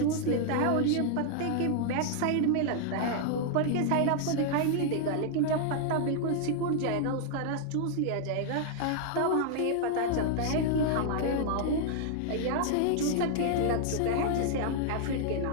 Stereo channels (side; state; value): both; different; correlation 0.00